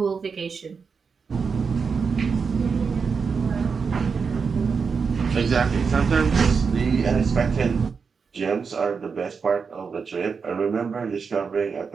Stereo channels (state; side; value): quieter; left; 5.5 dB